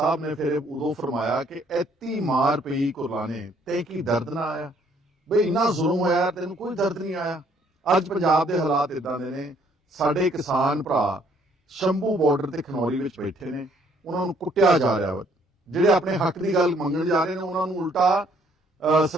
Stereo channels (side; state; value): both; normal; correlation 0.64